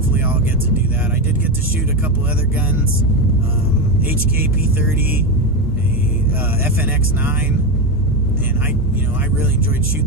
I'll get to do that. I did get to shoot a couple other guns, HK P30, a FNX9, and I really enjoyed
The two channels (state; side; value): normal; both; correlation 0.13